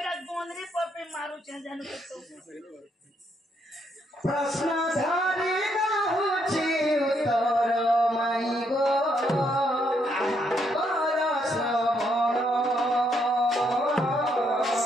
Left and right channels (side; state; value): both; normal; correlation 0.74